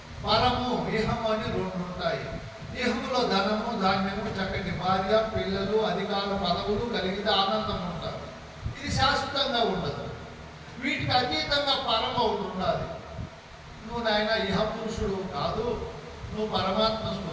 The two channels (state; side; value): identical; both; correlation 1.00